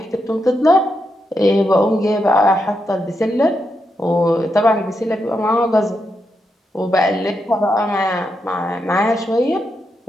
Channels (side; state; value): both; normal; correlation 0.84